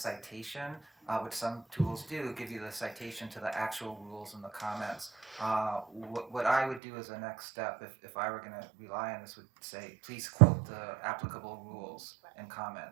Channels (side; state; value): left; drops out; at 6.8 s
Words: which some tools do, give you the citation to the actual rules and the comments. What I would do as a next step, if I were going to rely on this, would say, please quote the applicable rules and